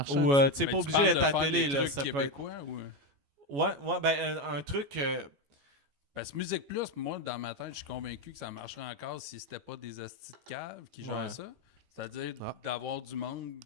Ou, tu sais, Ben, pas tu obligé parles d'être de à la faire télé, des là. trucs Ça peut être. québécois ou... Ouais, ben, un truc. Parce que Musique Plus, moi, dans ma tête, je suis convaincu que ça marcherait encore si c'était pas des hosties de cave qui gèrent Ouais. ça. C'est-à-dire d'avoir du monde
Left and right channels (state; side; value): late; left; 14 ms